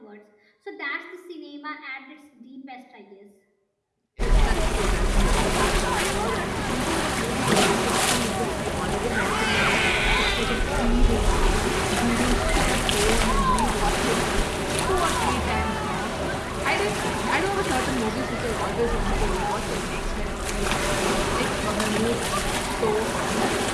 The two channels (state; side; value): identical; both; correlation 1.00